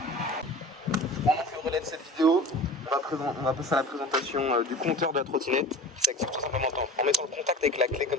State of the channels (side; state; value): both; normal; correlation 0.37